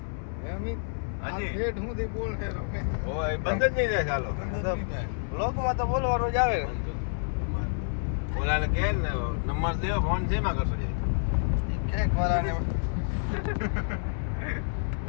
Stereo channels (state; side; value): silent; right; 59 dB below the other